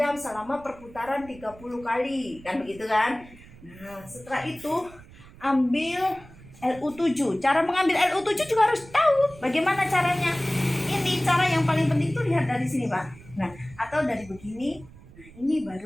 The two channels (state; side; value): noise; right; rumble, 21 dB below the sound